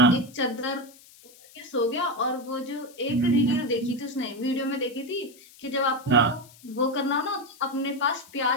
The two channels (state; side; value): noise; left; hiss, 24 dB below the sound